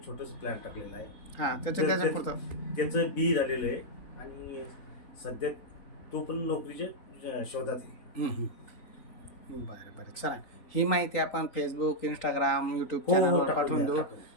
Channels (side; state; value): right; late; 3.8 ms